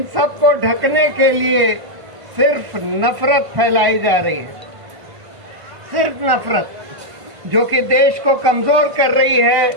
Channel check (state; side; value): late; left; 1.5 ms